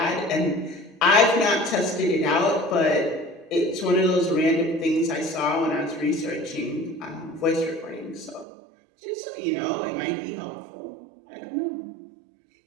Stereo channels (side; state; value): left; drops out; at 8.5 s